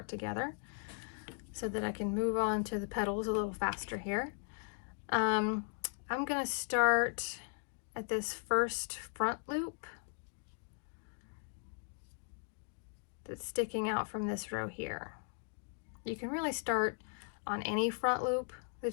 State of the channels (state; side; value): silent; right; 53 dB below the other